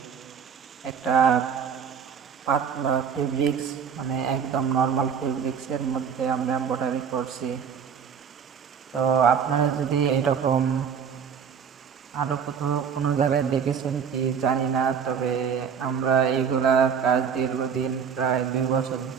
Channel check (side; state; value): left; quieter; 7.2 dB